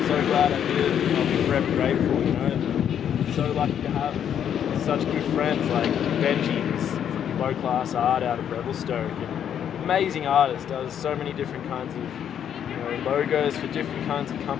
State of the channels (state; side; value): quieter; right; 9.1 dB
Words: so glad I did. And I'll be forever grateful. You know, I'm so lucky to have such good friends like Benji, who's from low class art out of Revelstoke, and amazing artist. Does so many different kinds of, you know, logos for different kinds of